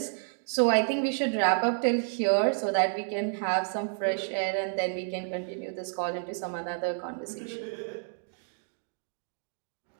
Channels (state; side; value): silent; left; digital silence